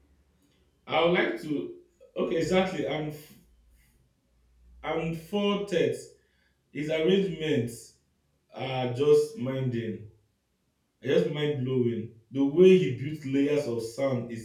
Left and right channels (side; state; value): both; identical; correlation 1.00